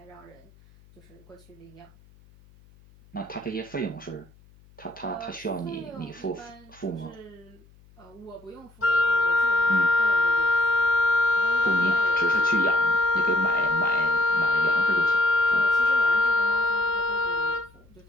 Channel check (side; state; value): left; noise; hum, 28 dB below the sound